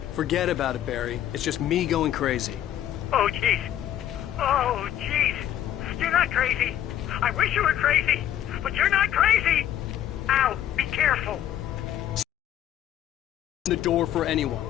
Forget about it, Barry. It's just me going crazy. Oh, jeez. Oh, jeez. You're not crazy. I wish you were crazy, but you're not crazy. Ow, be careful. The door for anyone.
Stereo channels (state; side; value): quieter; right; 11.4 dB